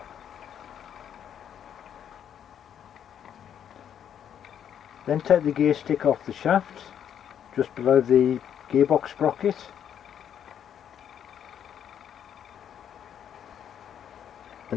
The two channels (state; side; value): quieter; right; 9.2 dB